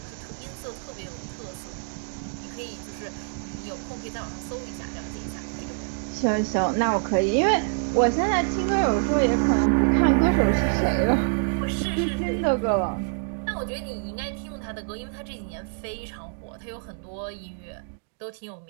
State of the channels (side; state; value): left; silent; digital silence